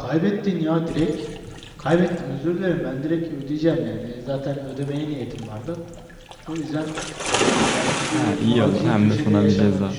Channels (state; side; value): identical; both; correlation 1.00